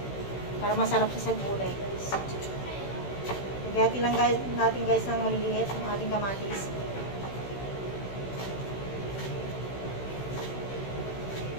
Para masarap siya sa gulay guys. Lagyan lang guys, natin guys ng maliliit ang ating kamatis.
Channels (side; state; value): right; late; 16 ms